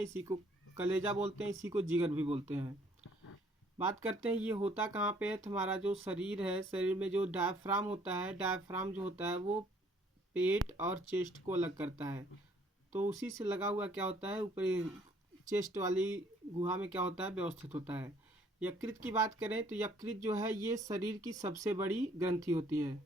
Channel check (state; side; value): normal; both; correlation 0.61